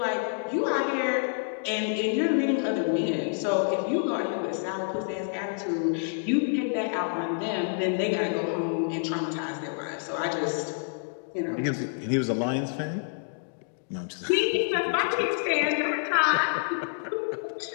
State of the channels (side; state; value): right; silent; digital silence